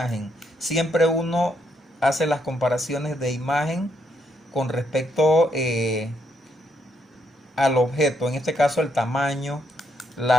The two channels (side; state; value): both; normal; correlation 0.76